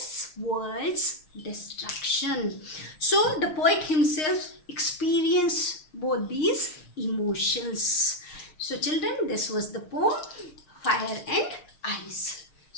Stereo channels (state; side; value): late; right; 6.5 ms